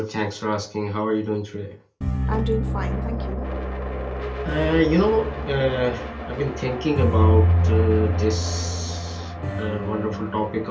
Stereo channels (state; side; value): identical; both; correlation 1.00